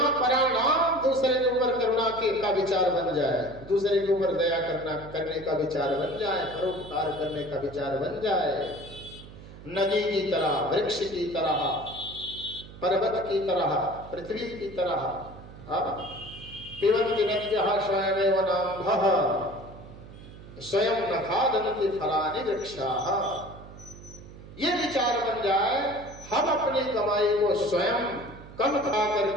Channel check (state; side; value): noise; right; hum, 17 dB below the sound